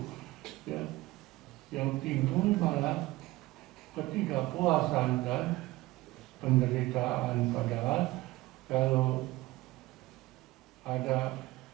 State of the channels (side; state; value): left; quieter; 18.8 dB